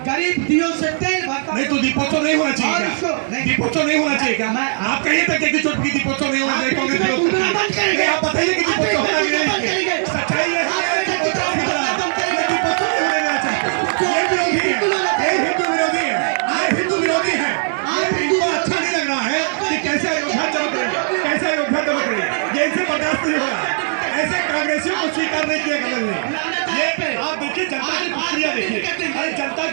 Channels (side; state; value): left; silent; digital silence